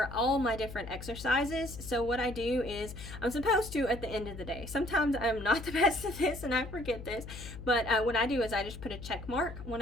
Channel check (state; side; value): noise; left; hum, 11 dB below the sound